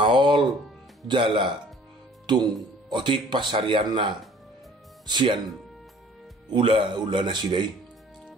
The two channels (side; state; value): both; normal; correlation 0.52